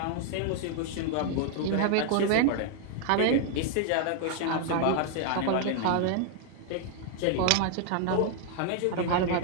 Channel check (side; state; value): both; different; correlation 0.00